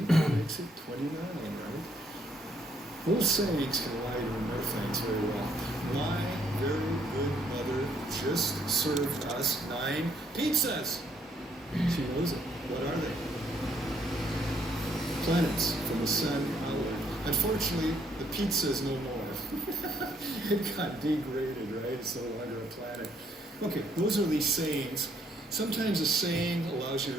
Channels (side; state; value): both; normal; correlation 0.69